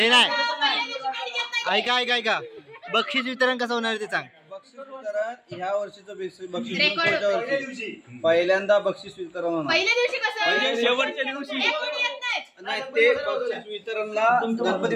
नाही ऐका बक्षीस वितरण कसं होणार ते सांग. बक्षीस वितरण ह्या वर्षीचं बक्षीस पुढच्या वर्षी पहिल्यांदा बक्षीस वितरण होणार. पहिल्या दिवशी कसं शेवटच्या दिवशी एक कोणी येत नाही. नाही ते बक्षीस वितरणला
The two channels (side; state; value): both; identical; correlation 1.00